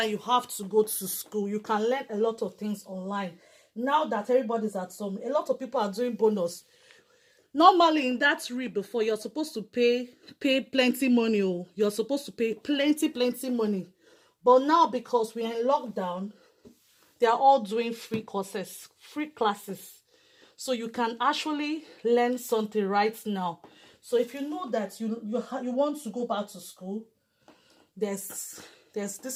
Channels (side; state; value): both; identical; correlation 1.00